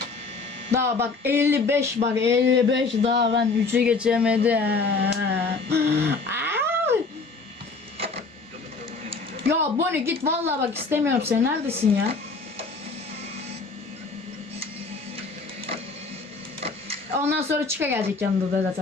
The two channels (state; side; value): quieter; right; 4.1 dB